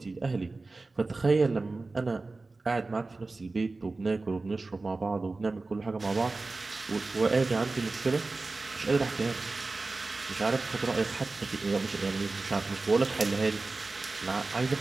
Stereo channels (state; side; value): quieter; left; 3.5 dB